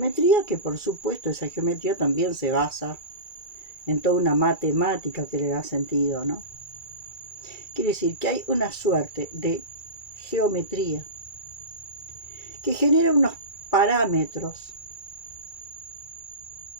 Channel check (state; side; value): late; right; 2.3 ms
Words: que, por supuesto, esa geometría también se basa en toda una matemática que le da sentido, ¿no? Quiere decir que hay una suerte de geometría que genera unos parámetros